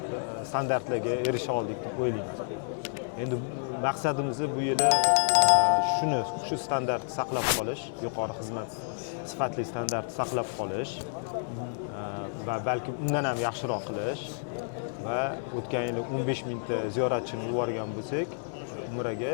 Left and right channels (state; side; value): silent; right; digital silence